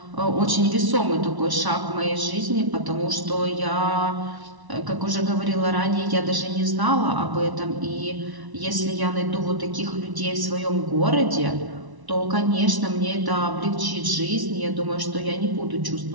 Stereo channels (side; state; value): left; late; 1.1 ms